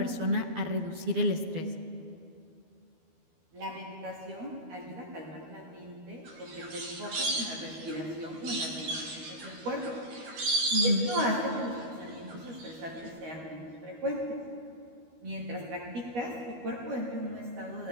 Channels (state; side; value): late; left; 12 ms